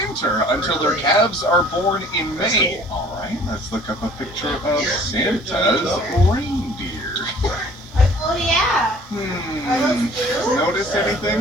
until their calves are born in May. All right, let's look up a picture of Santa's reindeer. Oh, yeah. Notice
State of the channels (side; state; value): both; normal; correlation 0.52